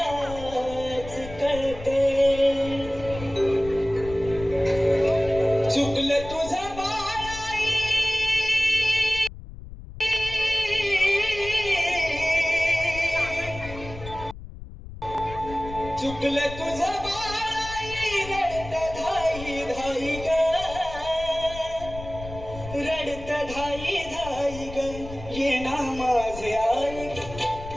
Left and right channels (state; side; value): noise; left; rumble, 13 dB below the sound